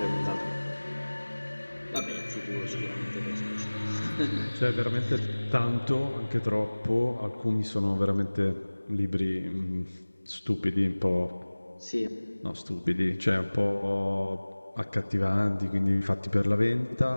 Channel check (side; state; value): both; inverted; correlation -1.00